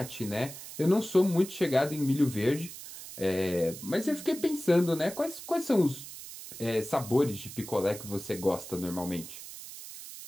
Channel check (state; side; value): noise; right; hiss, 13 dB below the sound